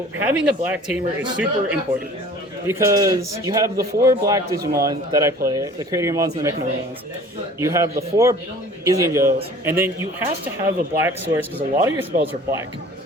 having a black tamer is super important, because you have the 4 black Digimon that I play, the Sakuyamons and the Magniture Mods. You have the 4 Izzy and Joes, and then you have to have a black source, because a lot of your spells are black.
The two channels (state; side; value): normal; both; correlation 0.47